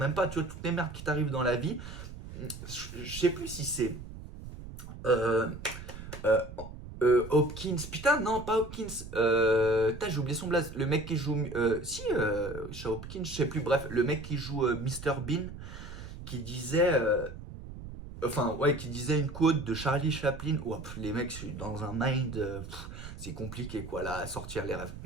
pas, tu vois, toutes les merdes qui t'arrivent dans la vie. Je sais plus si c'est euh, euh, Hopkins. Putain, non, pas Hopkins. J'ai oublié son blaze. Le mec qui joue. Si, chez Hopkins, je sais plus. Bref, le mec qui joue Mr Bean, qui disait. Enfin, ouais, qui disait une quote de Charlie Chaplin. Ouah, les mecs, je suis dans un mind. C'est compliqué, quoi, là, à sortir les rêves.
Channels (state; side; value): noise; right; rumble, 12 dB below the sound